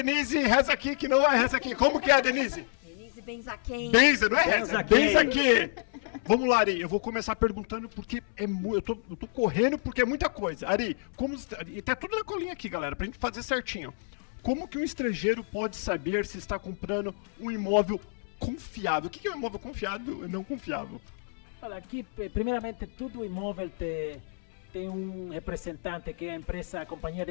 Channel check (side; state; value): right; silent; 58 dB below the other